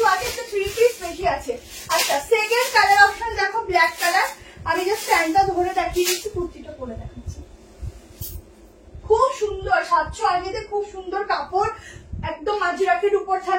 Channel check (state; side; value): identical; both; correlation 1.00